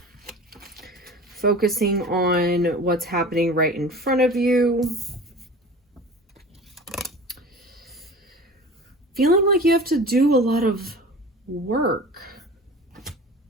Focusing on what's happening right in front of you. Feeling like you have to do a lot of work.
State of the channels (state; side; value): normal; both; correlation 0.38